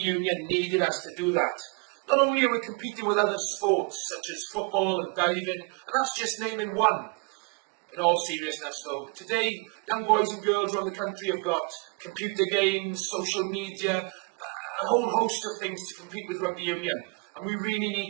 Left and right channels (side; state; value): left; quieter; 30.9 dB